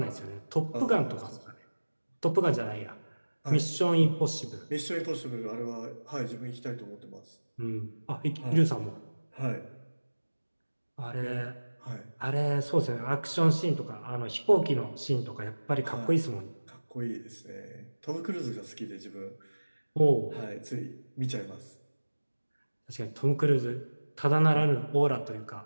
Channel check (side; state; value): both; inverted; correlation -1.00